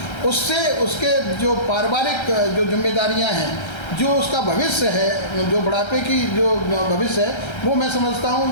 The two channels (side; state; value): right; late; 1.3 ms